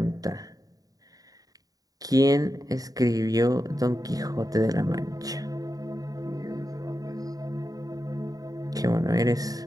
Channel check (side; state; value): left; late; 0.18 ms